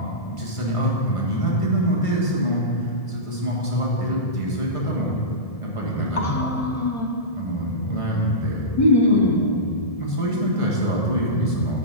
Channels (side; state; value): right; late; 1.7 ms